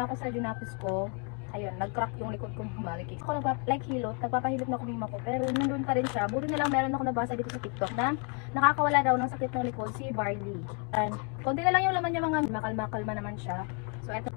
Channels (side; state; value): right; quieter; 36.8 dB